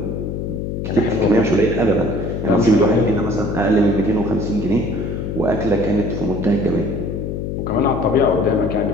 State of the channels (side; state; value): left; noise; hum, 4 dB below the sound